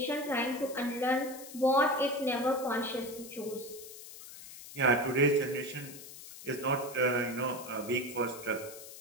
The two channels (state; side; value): noise; left; hiss, 14 dB below the sound